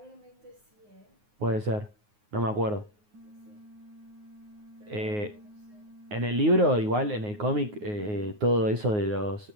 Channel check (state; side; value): late; left; 9.6 ms